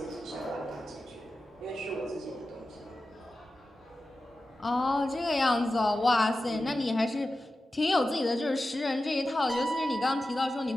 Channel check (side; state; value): both; normal; correlation 0.93